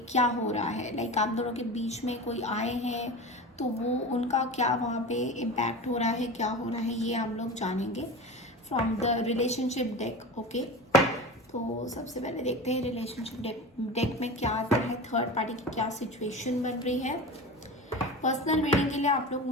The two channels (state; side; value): normal; both; correlation 0.30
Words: क्या हो रहा है, लाइक आप दोनों के बीच में कोई आए हैं तो वो उनका क्या वहाँ पे इम्पैक्ट हो रहा है, क्या हो रहा है, ये हम लोग जानेंगे from the relationship deck. Okay, तो सबसे पहले देखते हैं रिलेशनशिप डेक में क्या आता है, थर्ड पार्टी की क्या सिचुएशन बन रही है। पर्सनल रीडिंग के लिए आप लोग